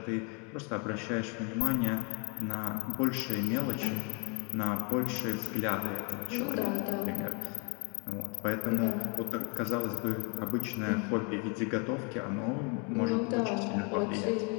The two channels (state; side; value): quieter; right; 34.1 dB